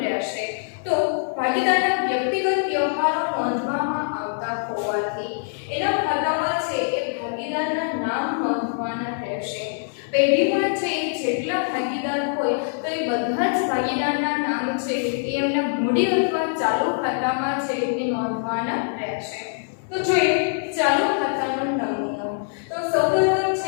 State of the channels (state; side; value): silent; right; 57 dB below the other